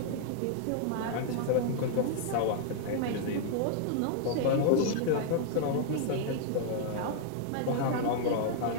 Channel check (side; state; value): both; different; correlation -0.01